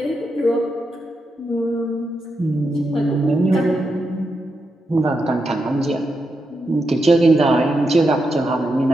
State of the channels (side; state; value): both; normal; correlation 0.85